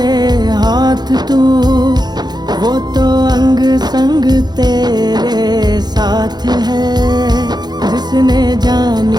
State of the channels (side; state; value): left; late; 0.20 ms